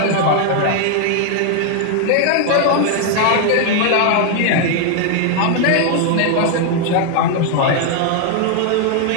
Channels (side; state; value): both; different; correlation 0.00